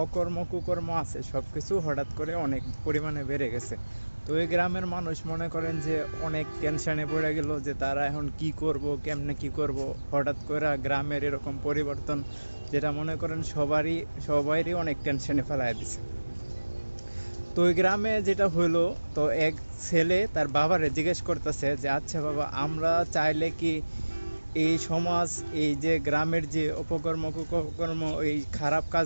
অকর্ম কুকর্ম আছে সব কিছু হঠাৎ করে অনেক পরিমাণে বেড়ে গেছে। তো এই গ্রামের মানুষ মনে করেন যে অনেক টেনশনে পড়ে গেল যে তারা এখন কি করব, কেমনে কি করব। হঠাৎ করে গ্রামের এরকম পরিবর্তন যেটা মনে করেন সবাইরই অনেক টেনশনে ফেলায় দিছে। তো ওই গ্রামে যেটা হলো, তো এক ছেলে তার বাবারে জিজ্ঞেস করতেছে যে আচ্ছা বাবা, আমরা চাইলে কি এই সমাজ, এই যে গ্রামের যে অপকর্ম কুকর্ম, এই খারাপ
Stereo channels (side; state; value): both; inverted; correlation -1.00